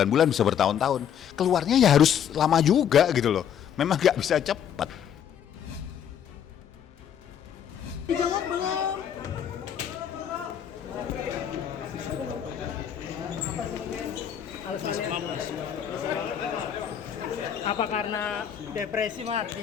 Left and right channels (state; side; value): quieter; right; 8.9 dB